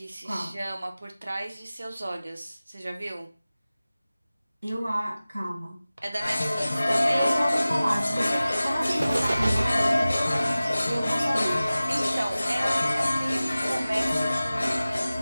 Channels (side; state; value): both; inverted; correlation -0.97